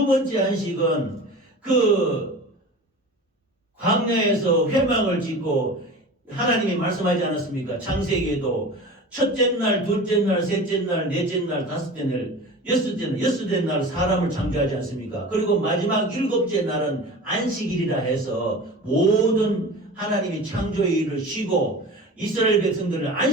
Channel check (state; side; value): normal; both; correlation 0.35